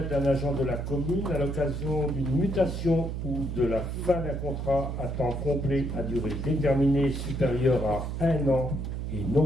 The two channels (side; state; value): right; noise; hum, 4 dB below the sound